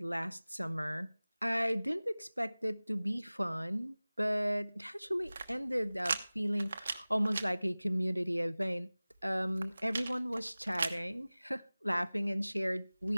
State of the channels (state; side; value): inverted; both; correlation -0.99